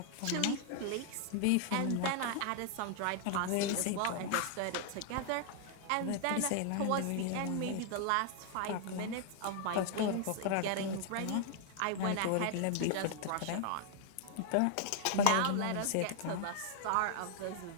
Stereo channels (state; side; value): different; both; correlation 0.00